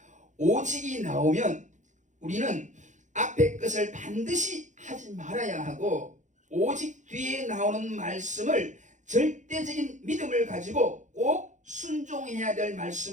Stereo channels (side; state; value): left; late; 0.35 ms